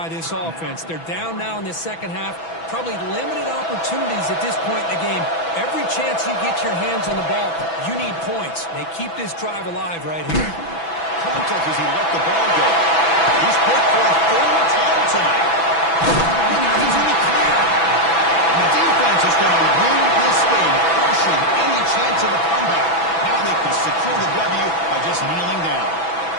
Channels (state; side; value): late; right; 6.1 ms